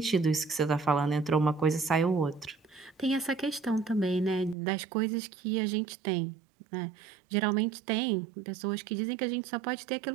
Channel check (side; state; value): left; drops out; at 4.5 s